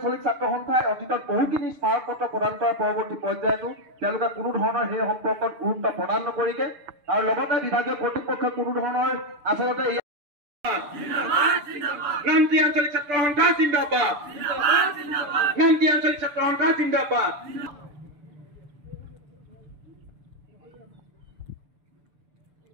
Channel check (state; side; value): late; left; 6.8 ms